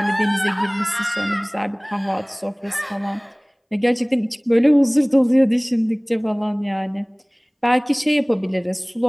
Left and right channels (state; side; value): identical; both; correlation 1.00